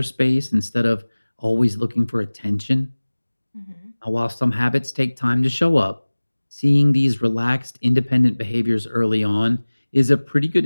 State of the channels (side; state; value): both; inverted; correlation -1.00